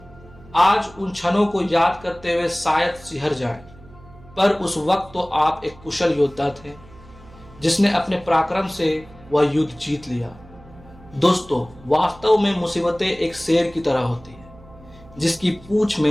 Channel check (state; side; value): noise; right; hum, 22 dB below the sound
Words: आज उन क्षणों को याद करते हुए शायद सिहर जाएं, पर उस वक्त तो आप एक कुशल योद्धा थे जिसने अपने पराक्रम से वह युद्ध जीत लिया। दोस्तों, वास्तव में मुसीबतें एक शेर की तरह होती है जिसकी पूंछ